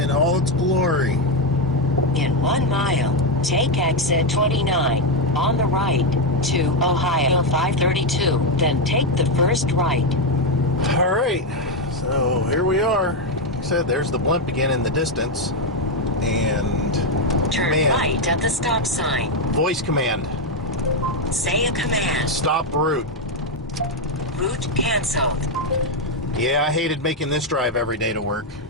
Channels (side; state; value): both; normal; correlation 0.05